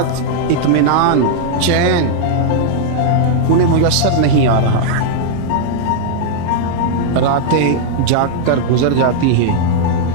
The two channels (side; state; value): both; different; correlation -0.01